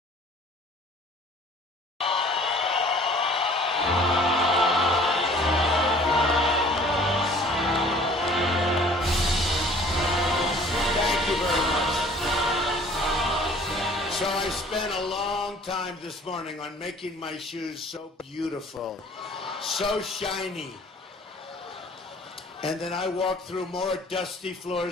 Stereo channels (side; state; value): both; normal; correlation 0.51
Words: Thank you very much. So I spent a long time this morning on making my shoes so beautiful, so shiny. And then I walked through more dusty